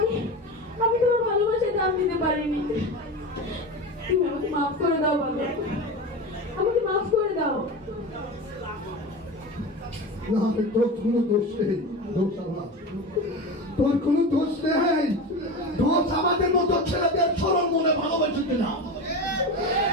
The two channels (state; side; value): normal; both; correlation 0.26